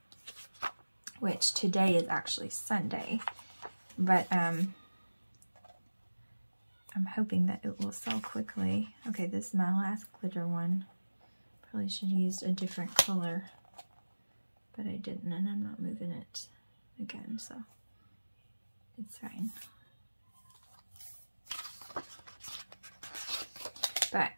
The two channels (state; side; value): inverted; both; correlation -1.00